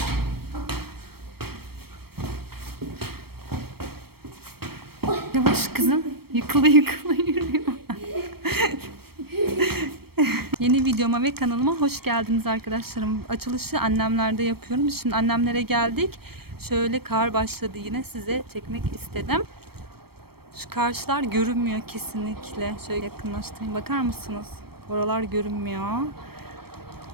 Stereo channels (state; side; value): late; left; 0.95 ms